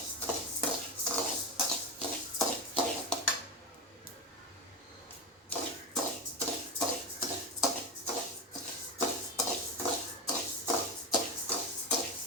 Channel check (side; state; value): both; normal; correlation 0.18